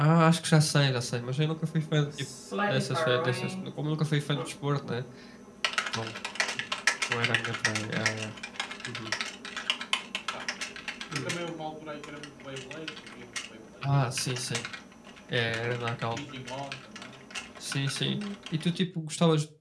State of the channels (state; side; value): identical; both; correlation 1.00